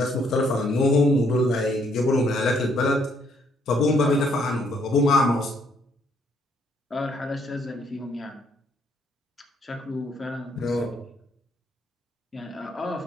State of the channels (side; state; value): both; normal; correlation 0.69